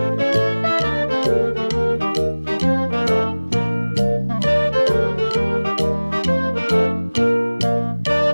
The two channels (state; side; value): inverted; both; correlation -1.00